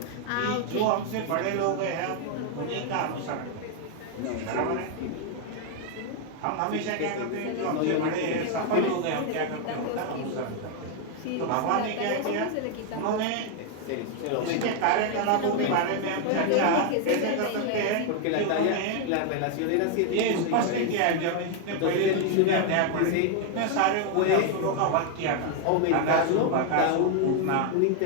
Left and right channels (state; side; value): different; both; correlation 0.01